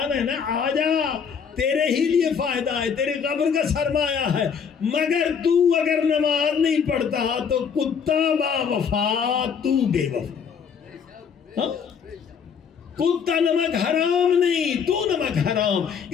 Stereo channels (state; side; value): quieter; right; 6.7 dB